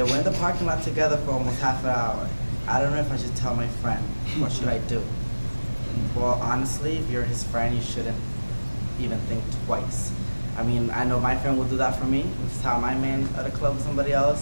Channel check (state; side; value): inverted; both; correlation -1.00